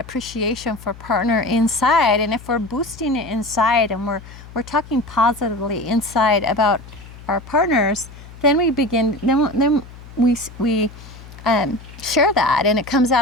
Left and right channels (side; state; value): left; noise; hum, 17 dB below the sound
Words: for partner inside. And if we're boosting it inside and we're talking positively inside about our partners, then we begin, then we share that, and it comes